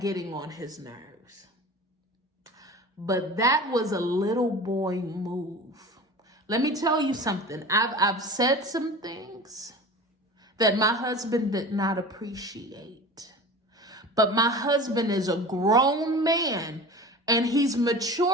on his nerves. But that was a little boy move. Let me tell you something. I've said some things that my husband did not appreciate. But my husband is a grown man, and he's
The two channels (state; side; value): normal; both; correlation 0.36